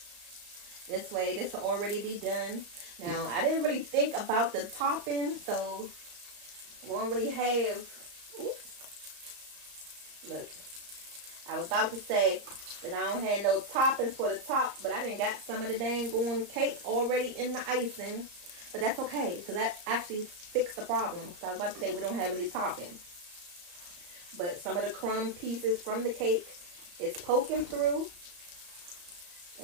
this way, this will already be done. Now, I didn't really think about the topping, so I won't really have. Oops. Look, I was about to say that I don't have no toppings for the top, but I didn't got some of the dang going cake already in the icing. But that's okay, so that actually fixed the problem. So I was about to say we don't have any toppings. But some of the crumb pieces from the cake is poking through.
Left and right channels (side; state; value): left; late; 34 ms